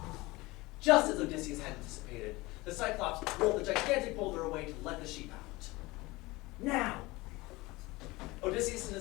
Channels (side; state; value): right; quieter; 21.6 dB